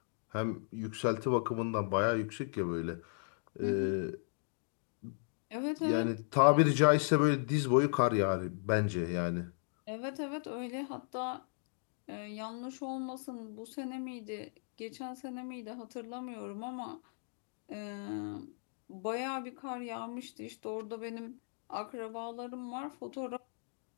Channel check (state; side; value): silent; right; digital silence